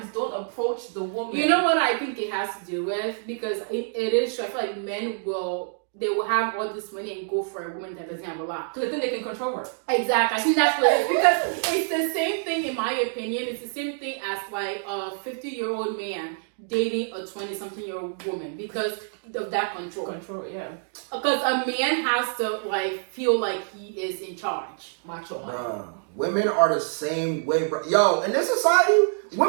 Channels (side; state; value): left; silent; digital silence